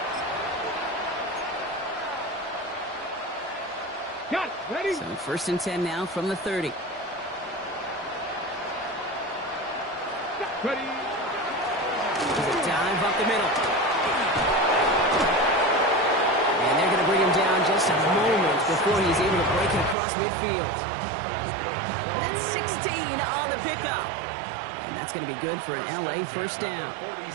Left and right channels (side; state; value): left; drops out; at 20.0 s